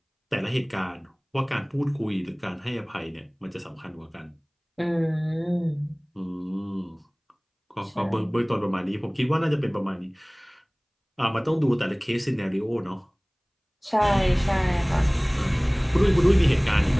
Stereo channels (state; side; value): identical; both; correlation 1.00